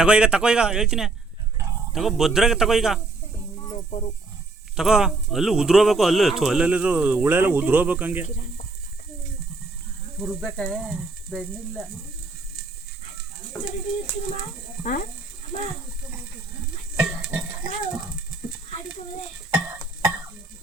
ತಗೋ ಈಗ ಹೇಳ್ತೀನಿ. ತಗೋ ಭದ್ರಾಗ ತಗೋ ಈಗ ತಗೋ. ಅಲ್ಲೂ ಉದ್ರೋಬೇಕು, ಅಲ್ಲಲ್ಲಿದ್ರು ಹುಳೆಲ್ಲ ಉದ್ರೋಬೇಕು ಹಂಗೆ. ಹುರ್ಬೇಕ ಬೆಣ್ಣಿಲ್ಲ.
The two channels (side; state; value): left; quieter; 3.5 dB